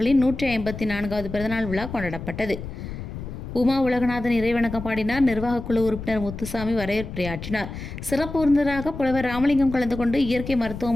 154வது பிறந்தநாள் விழா கொண்டாடப்பட்டது. உமா உலகநாதன் இறைவணக்கம் பாடினார். நிர்வாகக் குழு உறுப்பினர் முத்துசாமி வரவேற்புரையாற்றினார். சிறப்பு விருந்தினராக புலவர் ராமலிங்கம் கலந்து கொண்டு இயற்கை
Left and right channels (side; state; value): left; noise; rumble, 9 dB below the sound